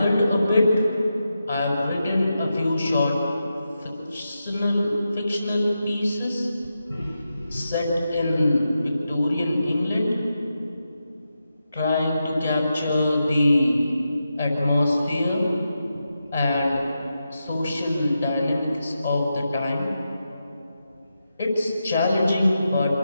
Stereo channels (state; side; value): inverted; both; correlation -0.88